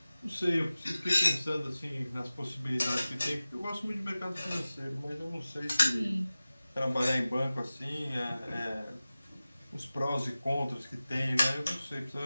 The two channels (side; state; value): both; inverted; correlation -0.96